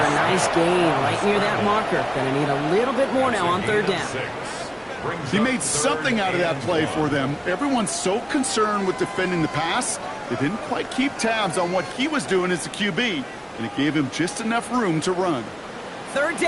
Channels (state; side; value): identical; both; correlation 1.00